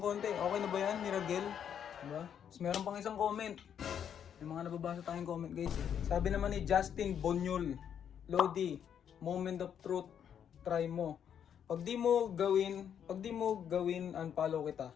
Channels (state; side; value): quieter; right; 8.6 dB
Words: konti. Okay na ba yan, Miragel? Diba? Tapos meron pang isang comment. May mga nababasa tayong comment guys eh. Sabi naman ni Justin Bonyol, Lodi, moment of truth, try mo. Pag di mo gawin, unfollow kita.